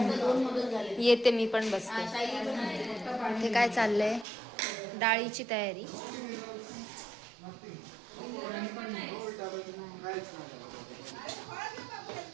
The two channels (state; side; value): drops out; left; at 4.2 s